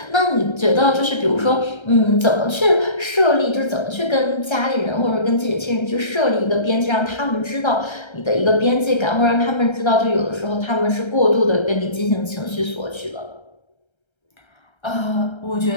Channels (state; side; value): late; right; 1.3 ms